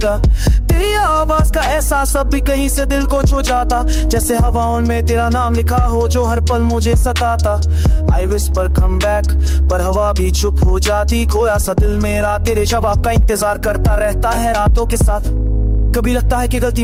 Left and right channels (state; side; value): identical; both; correlation 1.00